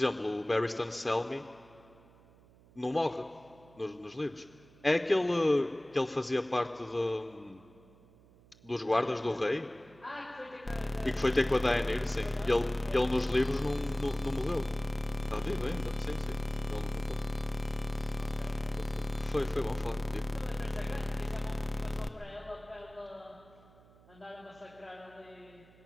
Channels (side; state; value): right; noise; hum, 26 dB below the sound